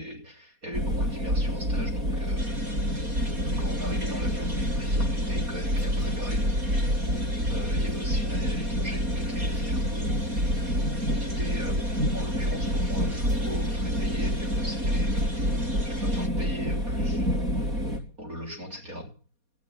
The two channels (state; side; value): late; left; 4.2 ms